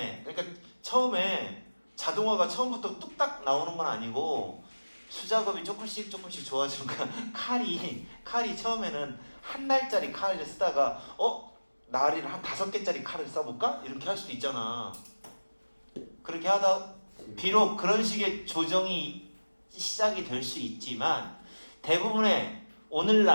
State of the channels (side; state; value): both; inverted; correlation -1.00